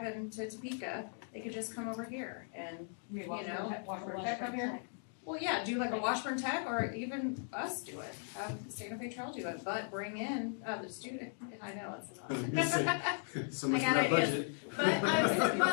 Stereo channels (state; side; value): silent; right; 53 dB below the other